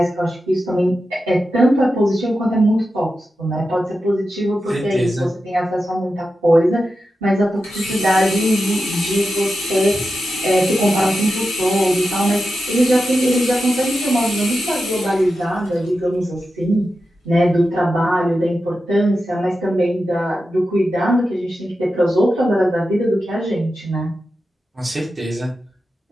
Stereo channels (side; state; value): both; normal; correlation 0.90